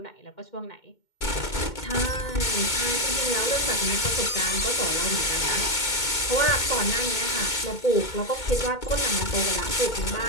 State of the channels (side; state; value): right; late; 2.2 ms